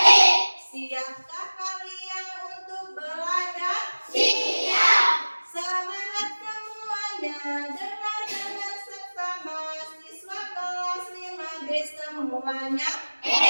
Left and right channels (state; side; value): inverted; both; correlation -1.00